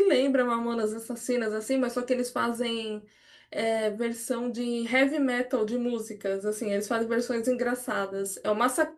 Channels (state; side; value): identical; both; correlation 1.00